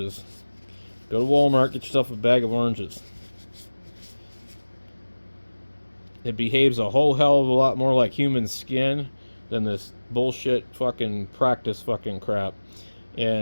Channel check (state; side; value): inverted; both; correlation -1.00